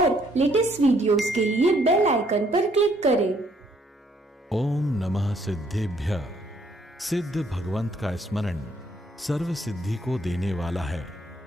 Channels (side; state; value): both; normal; correlation 0.67